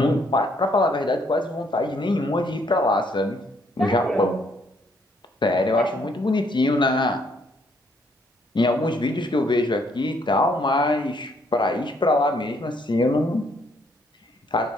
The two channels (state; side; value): normal; both; correlation 0.69